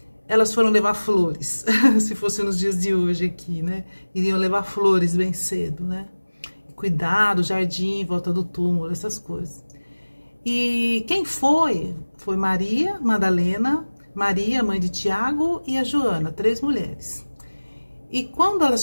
elas foram levar flores, se fosse nos dias de hoje aqui, né? Iriam levar flores bem cedo, né? Cuidar do jardim, em volta do túmulo, essas coisas. E quem foi? Foi Maria Madalena, Maria, mãe de Tiago, e a Joana, 3 mulheres. E quando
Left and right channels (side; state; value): both; inverted; correlation -1.00